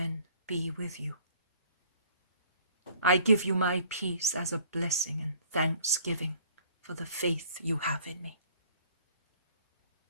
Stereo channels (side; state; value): both; inverted; correlation -0.54